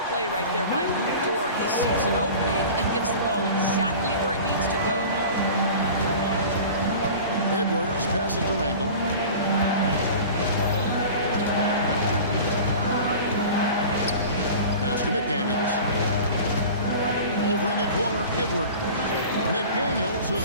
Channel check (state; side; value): inverted; both; correlation -0.38